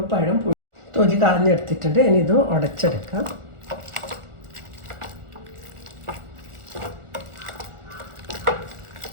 പഴം തൊലി കളഞ്ഞെടുത്തിട്ടുണ്ട്. ഇനി ഇത് ഉടച്ചെടുക്കാം.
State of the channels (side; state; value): left; late; 1.4 ms